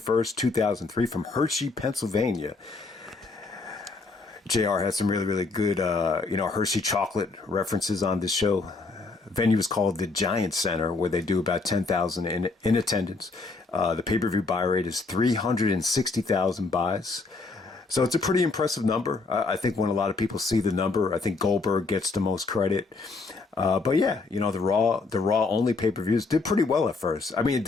2003 from Hershey, Pennsylvania. JR had some really, really good, Hershey chocolate references on this show. Venue is called the Giant Center, where they do about 10,000 in attendance. The pay-per-view buy rate is 360,000 buys. So it's a pretty impressive number. I think when a lot of people see the number, I think Goldberg gets the most credit. But yeah, the Raw only pay-per-views did pretty well at first. I mean, it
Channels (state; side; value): quieter; right; 3.9 dB